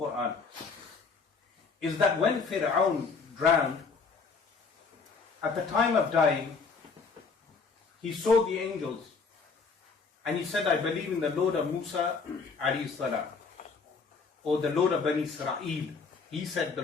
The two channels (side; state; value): right; quieter; 4.8 dB